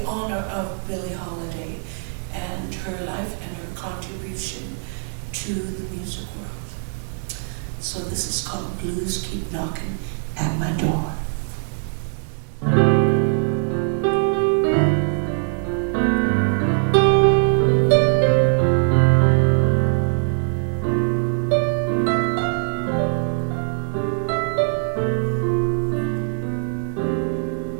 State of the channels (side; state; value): left; silent; digital silence